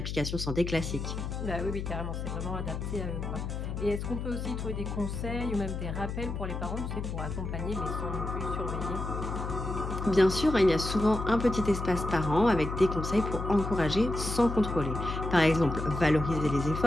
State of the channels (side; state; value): left; noise; hum, 4 dB below the sound